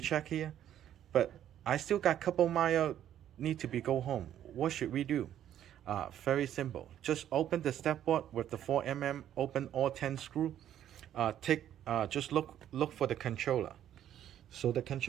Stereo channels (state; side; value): quieter; left; 11.0 dB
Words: but I still got a couple miles need to go home. What should we do? Very simple. Just open the step board with the 4mm, open all 10 screw. Just look for the controller. So the